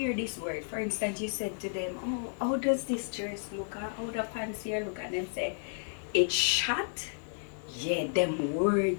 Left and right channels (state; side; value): silent; right; digital silence